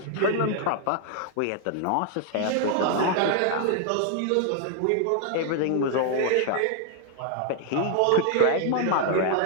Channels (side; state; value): both; different; correlation 0.00